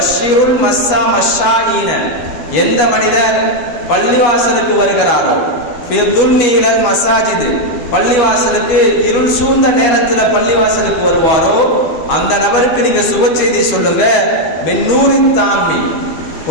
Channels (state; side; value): late; right; 12 ms